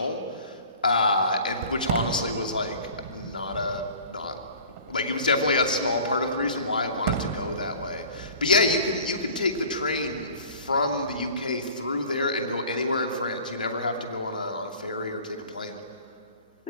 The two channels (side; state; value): both; inverted; correlation -0.45